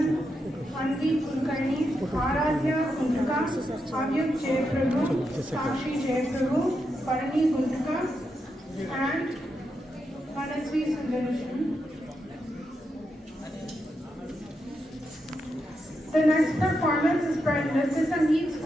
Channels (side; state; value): both; normal; correlation 0.84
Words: Anvi Kulkarni, Aradhya Guntuka, Avyuk Jayaprabhu, Sakshi Jayaprabhu, Parani Guntuka, and Manasvi Sundarishan. The next performance is by Nritya Sangeet